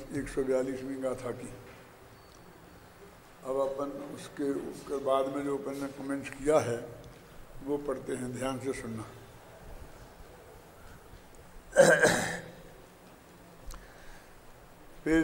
गाथा की। अब अपन उसके बाद में जो अपन ने कमेंट्स किया है वो पढ़ते हैं, ध्यान से सुनना।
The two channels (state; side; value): identical; both; correlation 1.00